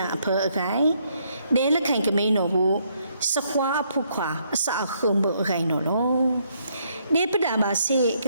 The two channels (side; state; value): both; inverted; correlation -0.72